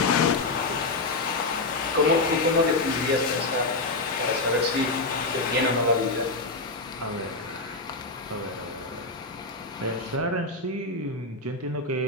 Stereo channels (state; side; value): quieter; right; 3.2 dB